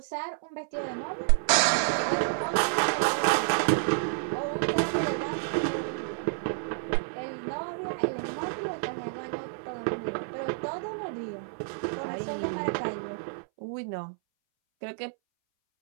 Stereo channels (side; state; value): left; silent; 58 dB below the other